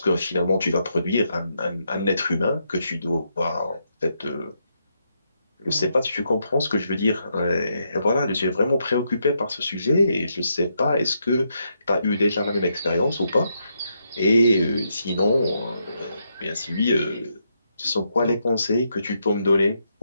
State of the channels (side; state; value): both; inverted; correlation -0.80